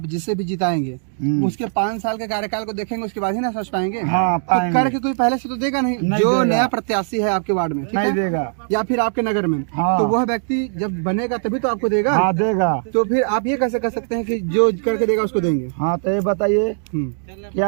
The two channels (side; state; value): left; silent; digital silence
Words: जिसे भी जिताएंगे उसके 5 साल के कार्यकाल को देखेंगे, उसके बाद ही ना समझ पाएंगे। हाँ, तो करके कोई पहले से तो देगा नहीं जो देगा। नया प्रत्याशी है आपके वार्ड में, ठीक नहीं है? देगा या फिर आपके नगर में। हाँ। तो वह व्यक्ति जब बनेगा तभी तो आपको देगा। हाँ देगा। तो फिर आप ये कैसे कर सकते हैं कि जो करके देगा उसको देंगे? हाँ तो ये बताइए